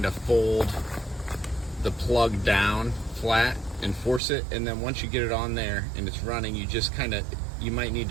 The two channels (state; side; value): drops out; left; at 4.2 s